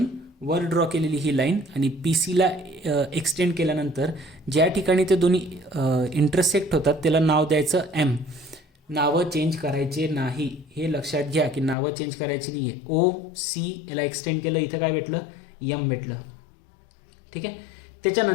वर ड्रॉ केलेली ही लाईन आणि PC ला एक्सटेंड केल्यानंतर ज्या ठिकाणी ते दोन्ही इंटरसेक्ट होतात त्याला नाव द्यायचं M. नावं चेंज करायचे नाही, हे लक्षात घ्या की नावं चेंज करायची नाही आहे. OC याला एक्सटेंड केलं, इथं काय भेटलं, M भेटलं. ठीक आहे.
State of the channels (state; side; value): drops out; right; at 11.8 s